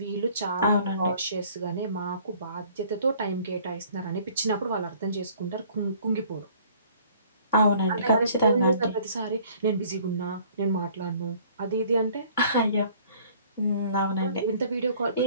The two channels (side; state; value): both; inverted; correlation -0.55